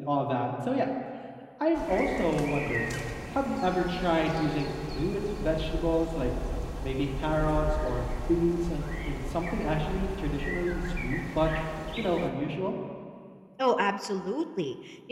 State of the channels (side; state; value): both; identical; correlation 1.00